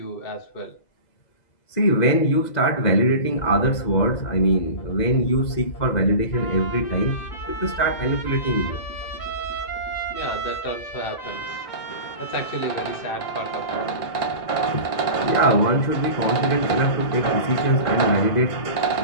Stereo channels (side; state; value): right; late; 2.0 ms